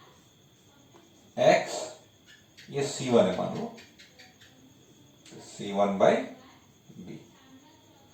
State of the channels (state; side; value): identical; both; correlation 1.00